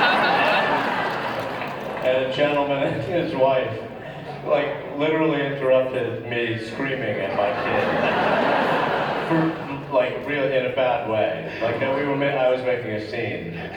And a gentleman and his wife, like, literally interrupted me screaming at my kid. For, like, really in a bad way. Like, I was making a scene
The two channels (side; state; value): both; identical; correlation 1.00